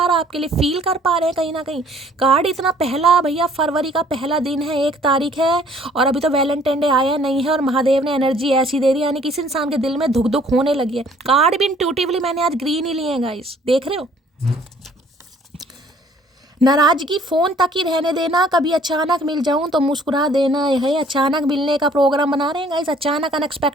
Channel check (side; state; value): both; normal; correlation 0.58